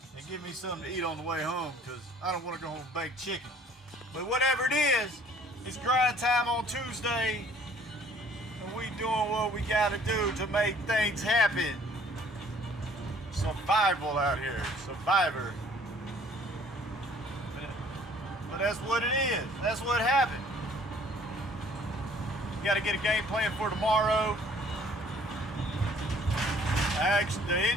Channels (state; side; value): normal; both; correlation 0.56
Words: and give me something to eat on the way home because I don't want to go home and bake chicken. But whatever it is, it's grind time on Tuesday, and we doing what we got to do to make things happen. Survival out here, survivor. But that's what it is. That's what happened. Got to get a game plan for tomorrow. The